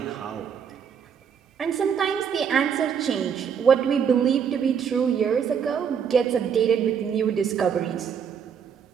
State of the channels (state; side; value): quieter; left; 7.4 dB